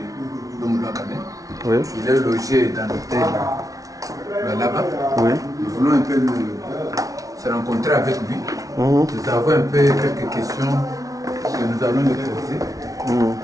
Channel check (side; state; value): left; late; 0.17 ms